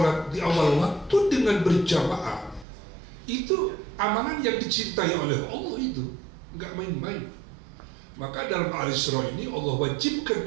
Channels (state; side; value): drops out; left; at 2.7 s